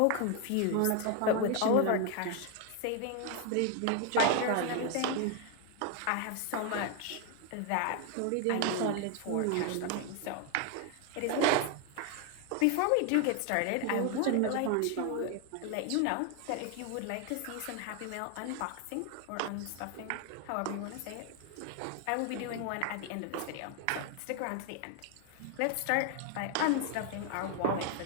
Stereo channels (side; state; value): both; different; correlation 0.01